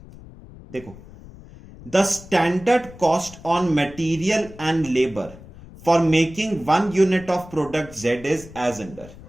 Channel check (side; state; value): left; noise; rumble, 19 dB below the sound